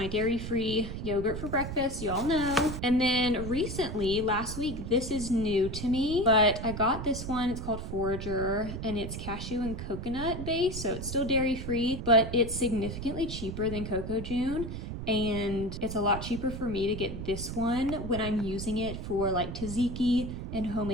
dairy-free yogurt for breakfast, you all know. And then recently, last week, this is new to me, but I got this one. It's called Forager, and it's cashew and coconut based, so it's still dairy-free, but it's significantly cheaper than Coco June. And it's a lot cheaper for me to get this one when I'm using it for like tzatziki and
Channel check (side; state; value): right; noise; rumble, 7 dB below the sound